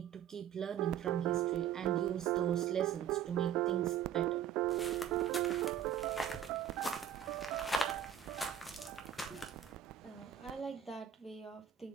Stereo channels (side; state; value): left; quieter; 9.6 dB